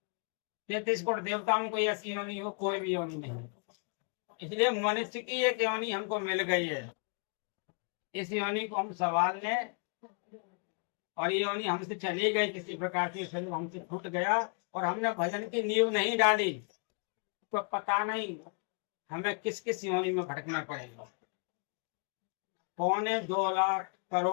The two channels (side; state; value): right; quieter; 38.8 dB